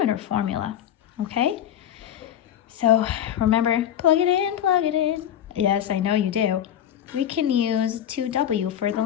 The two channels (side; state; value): right; quieter; 10.3 dB